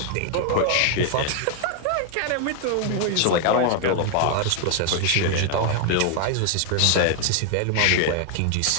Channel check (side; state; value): both; different; correlation 0.00